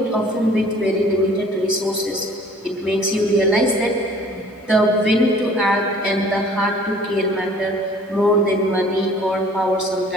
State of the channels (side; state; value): both; normal; correlation 0.52